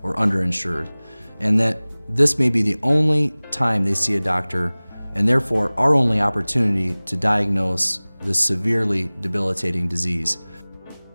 or underinsured, and that this may be the only time they see a doctor, and therefore our only opportunity to diagnose this severely debilitating disease.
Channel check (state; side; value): inverted; both; correlation -1.00